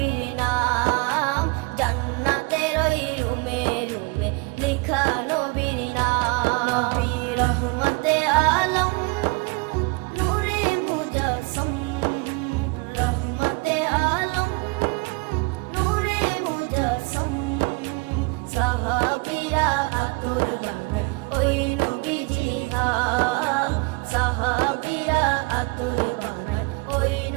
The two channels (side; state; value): left; quieter; 27.3 dB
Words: নাম, জান্নাতের ওই রুমে রুমে লেখা নবীর নাম। নবী রহমতে আলম নূরে মুজাসসম, রহমতে আলম নূরে মুজাসসম। সাহাবীরা আতর বানায় ওই নবীজির ঘাম, সাহাবীরা আতর বানায় ওই